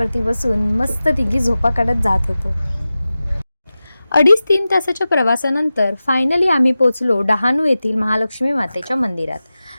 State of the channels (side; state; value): both; inverted; correlation -0.95